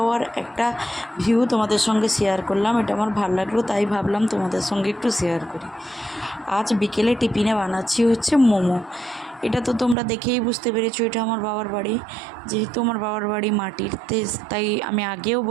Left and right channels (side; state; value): left; drops out; at 10.0 s